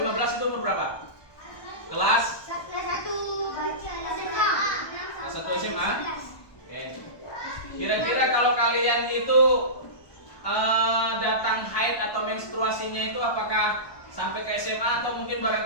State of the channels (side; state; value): right; late; 1.2 ms